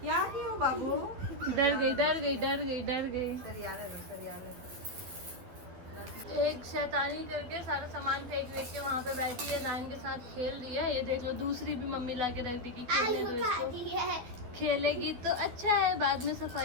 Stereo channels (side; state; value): left; late; 12 ms